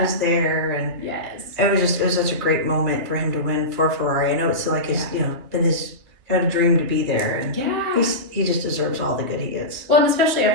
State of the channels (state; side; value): late; left; 3.0 ms